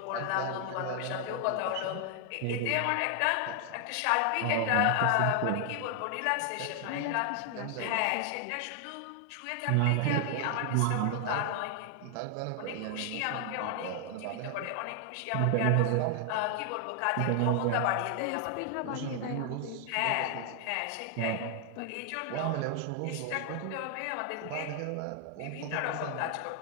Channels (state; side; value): different; both; correlation 0.00